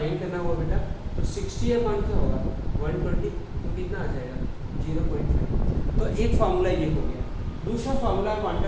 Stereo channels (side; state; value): both; identical; correlation 1.00